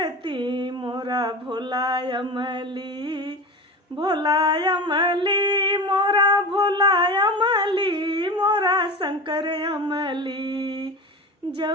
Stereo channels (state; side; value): normal; both; correlation 0.28